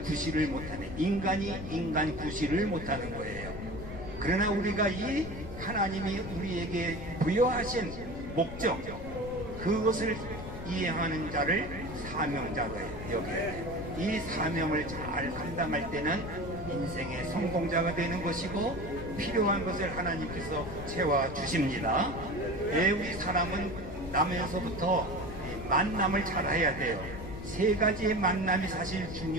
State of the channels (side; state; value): left; noise; rumble, 10 dB below the sound